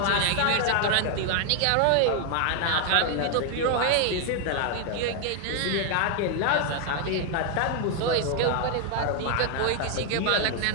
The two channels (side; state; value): both; different; correlation 0.00